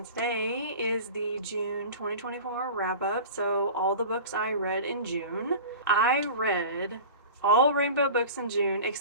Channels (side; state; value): both; inverted; correlation -0.36